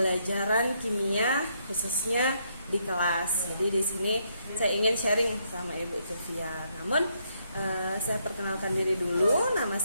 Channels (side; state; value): both; inverted; correlation -0.75